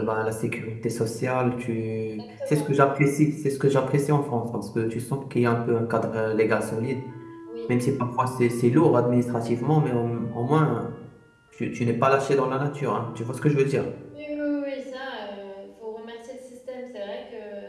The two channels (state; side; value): identical; both; correlation 1.00